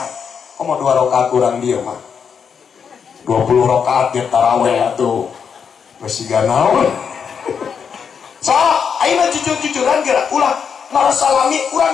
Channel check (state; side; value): quieter; right; 6.8 dB